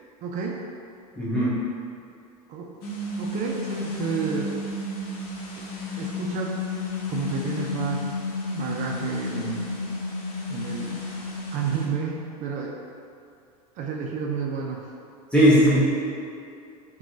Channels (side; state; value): both; normal; correlation 0.21